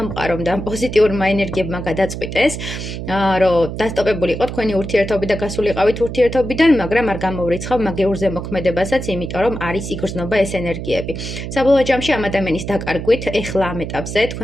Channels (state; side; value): noise; right; hum, 7 dB below the sound